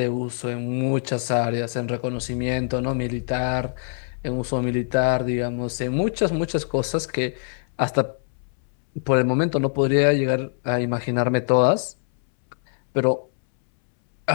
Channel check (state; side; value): silent; right; 63 dB below the other